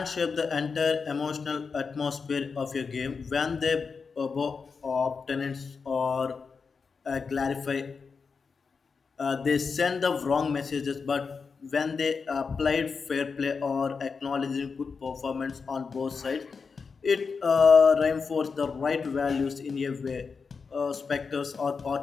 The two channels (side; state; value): right; quieter; 5.2 dB